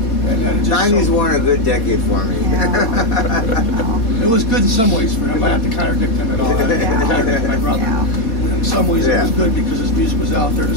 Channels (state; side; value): late; right; 4.2 ms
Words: And then it just 90s weren't a good decade for me. Yeah. It was good in some ways for him. I have to contradict him at all. I contradict my brother. Yeah. In some ways, it was good because his music was out there. The